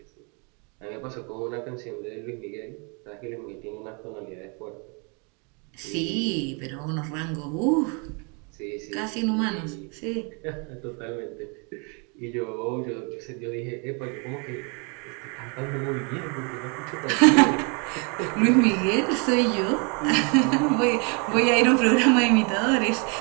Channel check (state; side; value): quieter; left; 34.3 dB